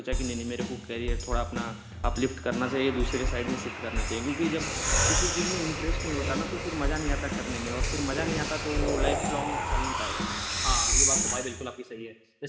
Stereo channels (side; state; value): both; identical; correlation 1.00